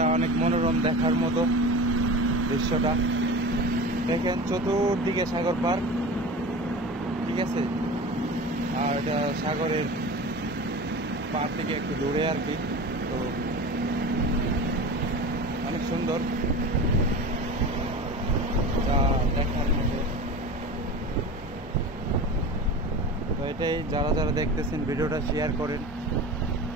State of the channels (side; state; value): both; normal; correlation 0.33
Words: অনেক মনোরম দেখার মতো দৃশ্যটা। দেখেন চতুর্দিকে সাগর পার, ঠিক আছে। আর এটা সাগরের পার থেকে একটু দূরে আর কি। তো অনেক সুন্দর, যা দেখার মতো। তো এটাই, যারা যারা দেখতেছেন ভিডিওটা শেয়ার করেন